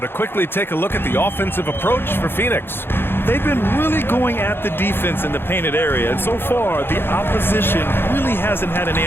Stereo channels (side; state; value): right; late; 0.11 ms